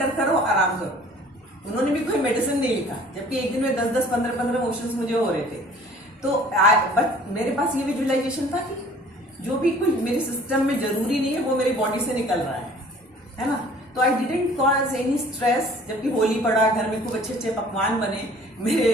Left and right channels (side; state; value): both; normal; correlation 0.51